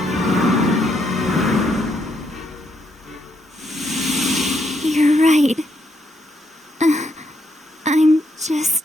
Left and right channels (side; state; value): both; normal; correlation 0.76